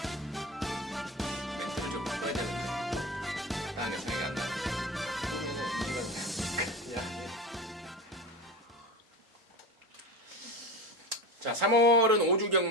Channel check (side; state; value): both; normal; correlation 0.27